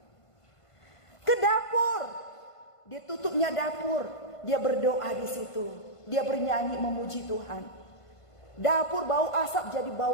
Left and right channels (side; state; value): right; late; 1.5 ms